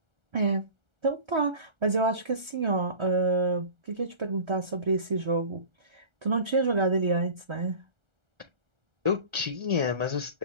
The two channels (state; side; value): late; left; 1.3 ms